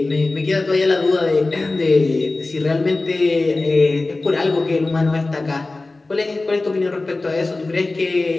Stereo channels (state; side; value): quieter; right; 3.2 dB